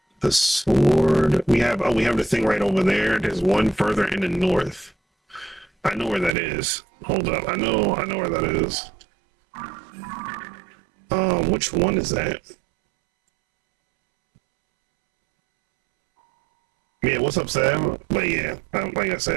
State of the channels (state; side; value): drops out; left; at 6.4 s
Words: The sword. We have the thing right over there. There's one further in the north. I know where that is. Hold up. I know where that is. Which one is that? Yeah, what's up, Sam? But yeah, like I